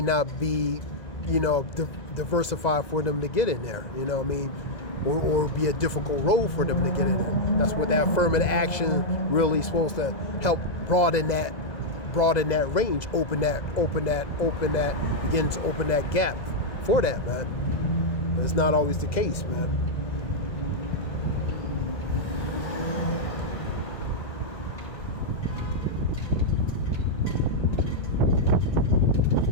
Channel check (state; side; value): late; right; 2.0 ms